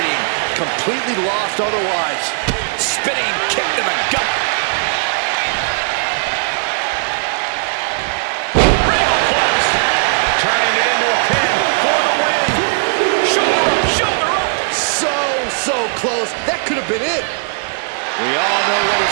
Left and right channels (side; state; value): left; silent; digital silence